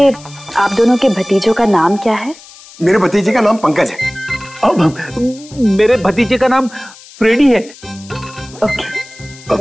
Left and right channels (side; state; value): left; noise; hiss, 21 dB below the sound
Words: आप दोनों के भतीजों का नाम क्या है? मेरे भतीजे का नाम पंकज है। मेरे भतीजे का नाम फ्रेडी है। ओके।